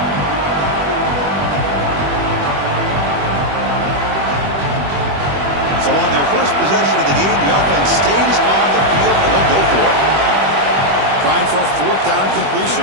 So on their first possession of the game, the offense stays on the field and they'll go for it. Trying for a fourth down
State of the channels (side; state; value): left; late; 21 ms